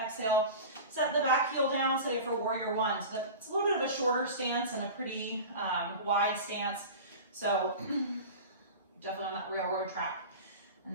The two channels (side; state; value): both; inverted; correlation -0.32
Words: exhale, set the back heel down, say it for warrior one. So that's a little bit of a shorter stance and a pretty wide stance. So definitely on that railroad track